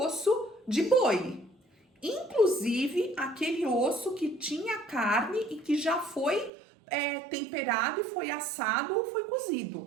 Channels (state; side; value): drops out; left; at 6.5 s